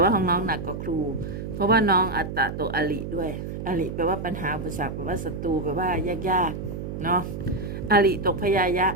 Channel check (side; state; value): right; noise; hum, 6 dB below the sound